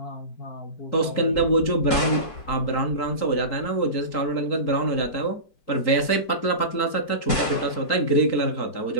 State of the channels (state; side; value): late; right; 4.6 ms